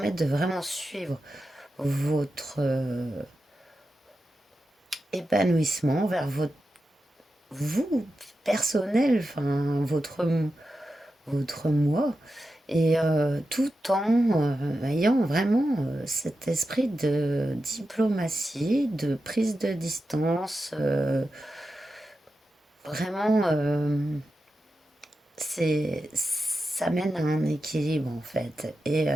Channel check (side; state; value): both; normal; correlation 0.90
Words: de vraiment suivre votre épanouissement vers votre vous personnel, enfin votre moi, et tout en ayant vraiment cet esprit de diplomatie, de prise de distance, vraiment, ça mène à un équilibre en fait, et